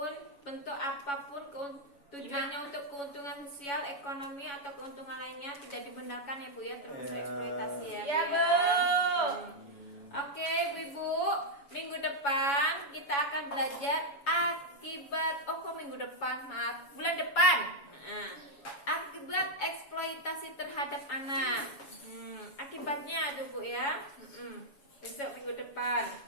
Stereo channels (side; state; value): right; late; 7.1 ms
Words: bentuk apapun, tujuannya untuk keuntungan sosial, ekonomi atau keuntungan lainnya tidak dibenarkan ya Bu ya, termasuk eksploitasi ya Bu. Iya Bu. Oke Bu-ibu, minggu depan kita akan belajar akibat. Minggu depan, maaf, bulan depan. Akibat eksploitasi terhadap anak. Akibatnya tuh Bu ya. Besok minggu depan.